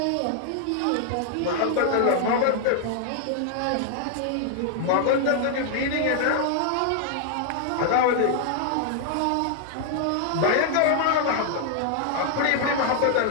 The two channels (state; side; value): different; both; correlation 0.00